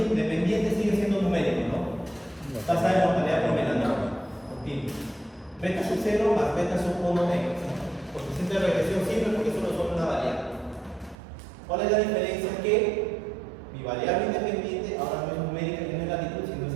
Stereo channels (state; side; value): drops out; left; at 11.2 s